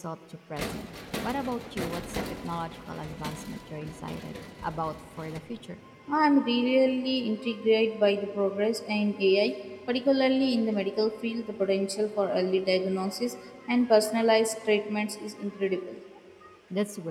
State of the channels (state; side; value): identical; both; correlation 1.00